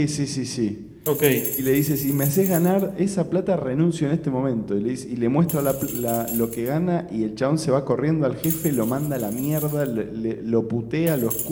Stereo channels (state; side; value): identical; both; correlation 1.00